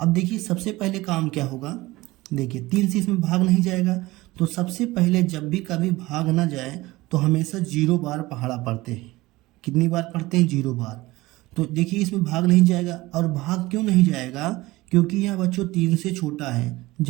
देखिए सबसे पहले काम क्या होगा। देखिए 3 से इसमें भाग नहीं जाएगा, तो सबसे पहले जब भी कभी भाग ना जाए तो हमेशा 0 बार पहाड़ा पढ़ते हैं। कितनी बार पढ़ते हैं? 0 बार। तो देखिए इसमें भाग नहीं जाएगा, और भाग क्यों नहीं जाएगा? क्योंकि यह बच्चों 3 से छोटा है।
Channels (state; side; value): quieter; left; 19.6 dB